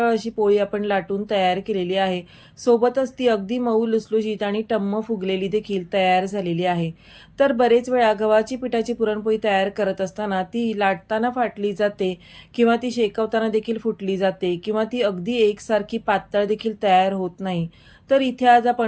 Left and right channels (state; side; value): identical; both; correlation 1.00